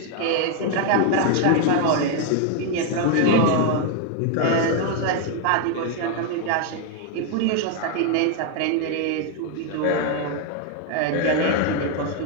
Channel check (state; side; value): different; both; correlation 0.01